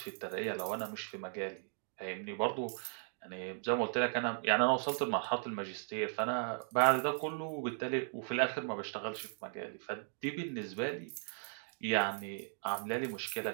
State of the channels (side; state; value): left; silent; 53 dB below the other